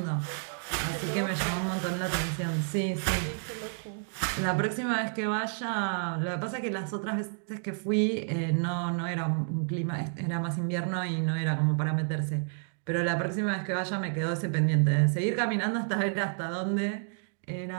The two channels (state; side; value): silent; left; digital silence